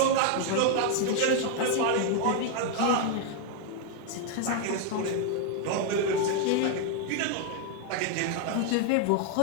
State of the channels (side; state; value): both; different; correlation 0.00